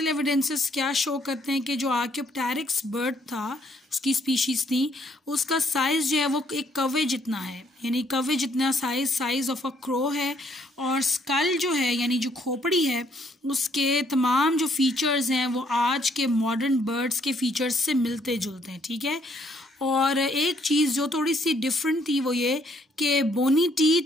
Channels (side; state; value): both; normal; correlation 0.68